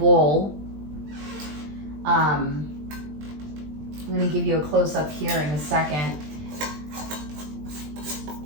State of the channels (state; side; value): late; left; 20 ms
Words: I'm gonna give you a close-up here in a second.